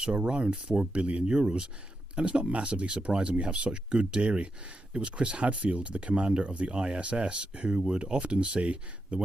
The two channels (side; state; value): both; normal; correlation 0.86